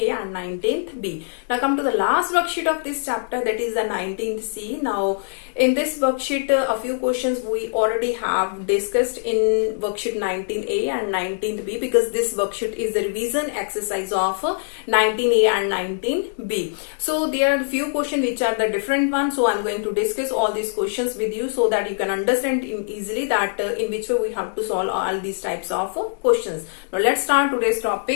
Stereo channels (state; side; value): silent; right; digital silence